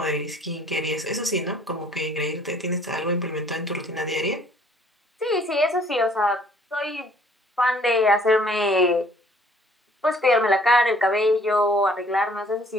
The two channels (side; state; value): both; normal; correlation 0.58